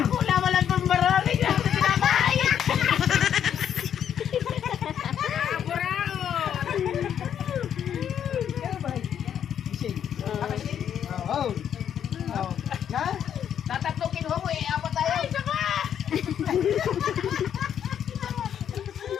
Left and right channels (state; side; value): quieter; right; 9.2 dB